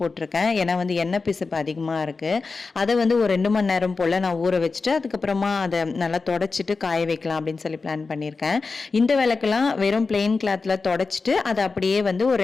போட்டிருக்கேன். ஏன்னா வந்து எண்ணெய் பிசுப்பு அதிகமாக இருக்குது. அதை வந்து ஒரு 2 மணி நேரம் போல் நான் ஊற வச்சுட்டு அதுக்கப்புறமா அதை நல்லா தொடச்சிட்டு காய வைக்கலாம் அப்படின்னு சொல்லி பிளான் பண்ணியிருக்கேன். இந்த விளக்கெல்லாம் வெறும் பிளெயின் கிளாத்தில் தொடச்சிட்டு அதை அப்படியே வந்து ஒரு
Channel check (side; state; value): right; quieter; 4.2 dB